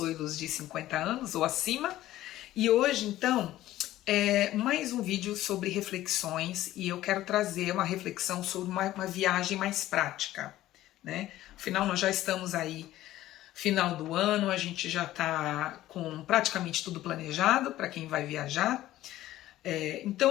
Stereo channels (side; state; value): right; quieter; 14.7 dB